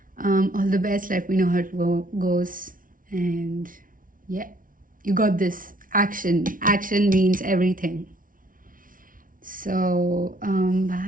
All the best. Let me know how it goes. And yeah, you got this. Action. Action means everything. So,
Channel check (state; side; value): late; left; 0.39 ms